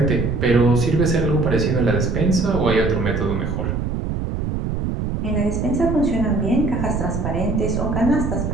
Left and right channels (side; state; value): right; noise; rumble, 2 dB below the sound